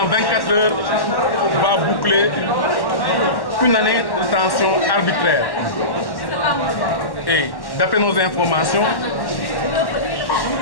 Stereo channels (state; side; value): late; right; 1.1 ms